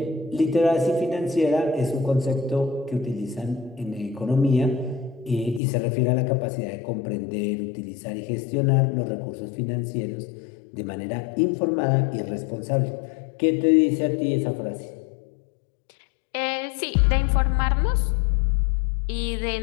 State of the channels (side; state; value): right; drops out; at 5.6 s